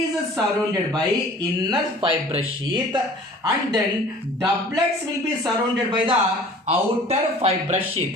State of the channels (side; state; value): both; normal; correlation 0.47